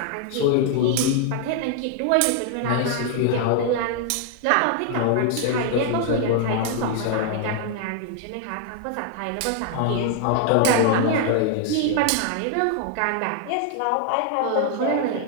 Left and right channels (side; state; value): both; different; correlation 0.00